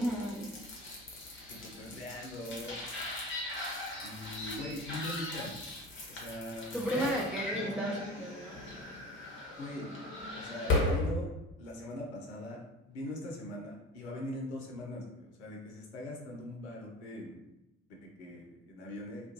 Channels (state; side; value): normal; both; correlation 0.34